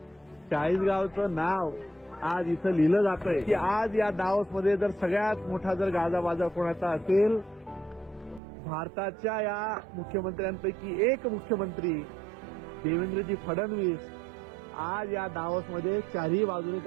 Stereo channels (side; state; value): left; drops out; at 8.4 s